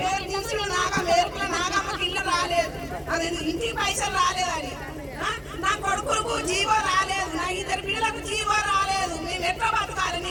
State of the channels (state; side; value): identical; both; correlation 1.00